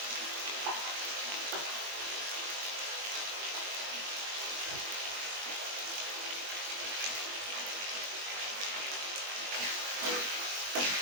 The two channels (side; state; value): left; late; 20 ms